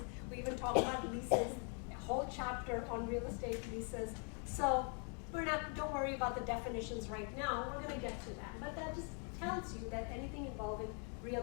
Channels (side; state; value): right; quieter; 39.6 dB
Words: We even talk about leases, a whole chapter on real estate leases. So don't worry about the definitions right now. We're going to get to that. But that just tells you that anything involving real